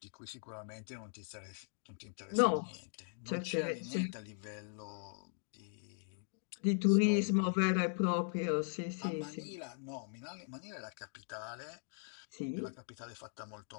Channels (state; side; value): silent; right; 52 dB below the other